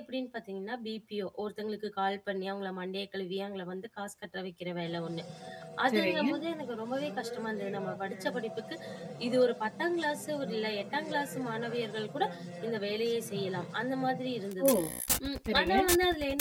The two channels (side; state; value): both; identical; correlation 1.00